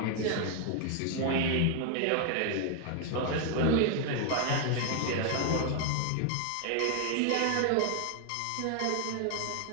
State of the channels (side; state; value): both; different; correlation 0.00